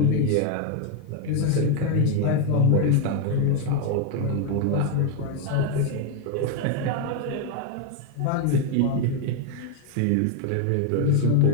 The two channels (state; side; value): different; both; correlation 0.01